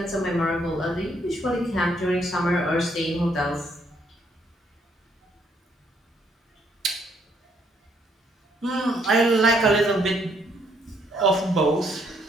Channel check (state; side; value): normal; both; correlation 0.70